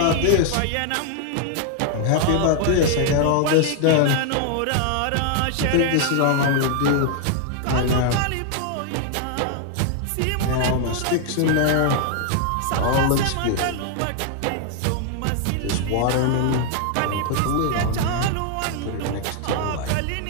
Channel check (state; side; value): different; both; correlation 0.00